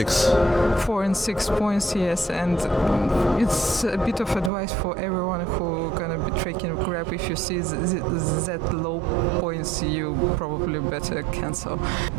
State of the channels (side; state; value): left; drops out; at 4.5 s